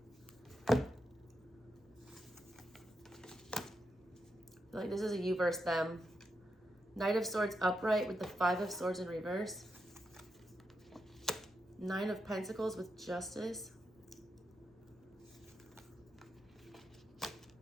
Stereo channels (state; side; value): normal; both; correlation 0.85